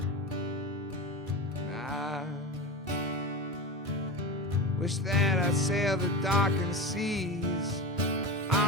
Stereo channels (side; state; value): both; normal; correlation 0.25